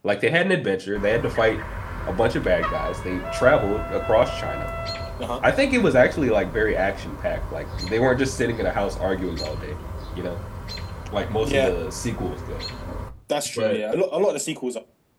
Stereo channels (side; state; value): both; identical; correlation 1.00